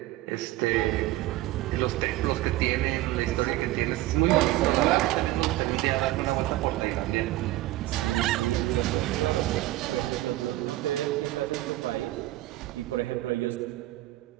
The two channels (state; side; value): quieter; left; 16.7 dB